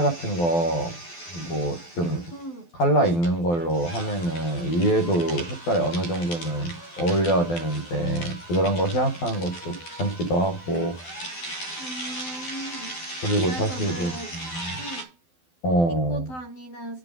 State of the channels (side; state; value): right; late; 12 ms